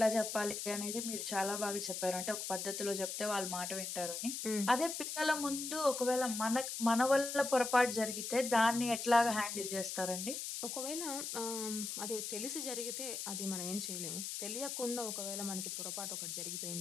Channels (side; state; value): left; noise; hiss, 4 dB below the sound